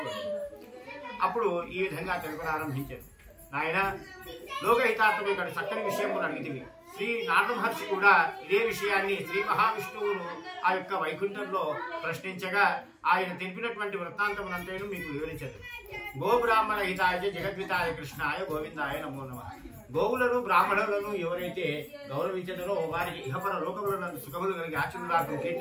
అప్పుడు ఈ విధంగా తెలుపనారంభించారు. నాయన, లోకహితార్థం ఇక్కడ చక్కని విషయం అడిగితివి. శ్రీ నారద మహర్షి కూడా ఇదే విషయాన్ని శ్రీ మహావిష్ణువును ఆ యొక్క వైకుంఠంలో ప్రశ్నించగా ఆయన తెలిపినటువంటి వృత్తాంతమునంతేను మీకు వివరించారు. గోబ్రాహ్మణ హితాయ జగద్వితాయ కృష్ణాయ గోవిందాయ నమో నమః. గోవులను బ్రాహ్మణులను ఎవరైతే గౌరవించదరో వారికి ఇహపర లోకములను సుఖములు కలిగి ఆచరణకు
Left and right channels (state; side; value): identical; both; correlation 1.00